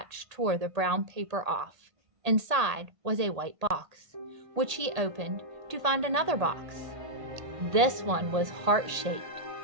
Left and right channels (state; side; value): late; left; 1.8 ms